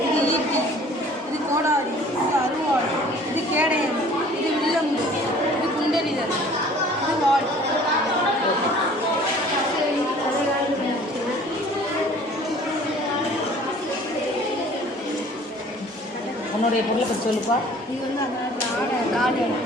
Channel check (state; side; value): normal; both; correlation 0.51